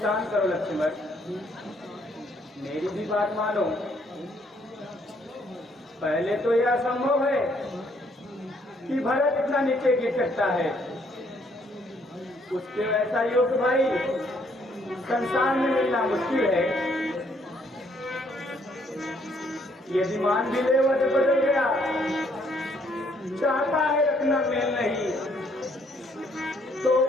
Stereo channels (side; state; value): both; normal; correlation 0.67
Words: शांत करो लक्ष्मण, मेरी भी बात मानो। पहले तो यह असंभव है कि भरत इतना नीचे गिर सकता है। उसके वैसा योग्य भाई संसार में मिलना मुश्किल है। यदि मान भी ले वह बदल गया, चाहता है रखना मेल नहीं, तो